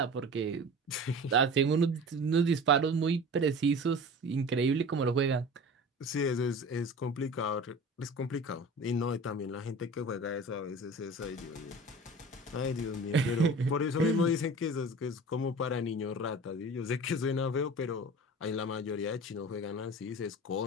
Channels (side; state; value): both; normal; correlation 0.37